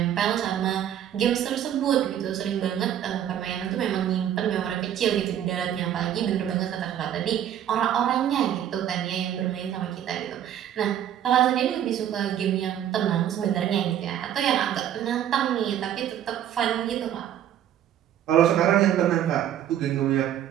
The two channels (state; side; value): quieter; left; 10.6 dB